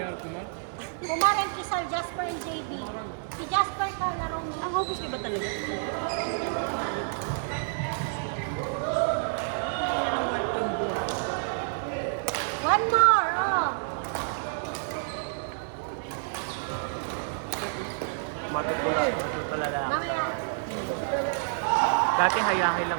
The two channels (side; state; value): left; silent; digital silence